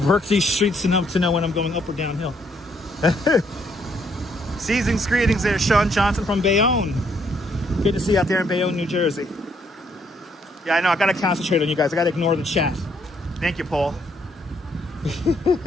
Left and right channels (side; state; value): both; normal; correlation 0.70